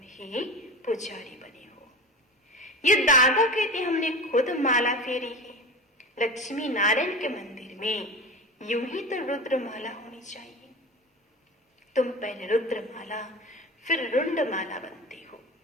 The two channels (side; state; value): both; normal; correlation 0.30